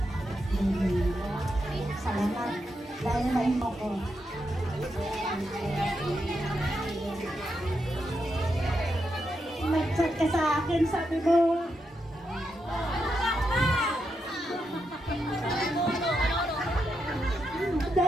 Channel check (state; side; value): normal; both; correlation 0.83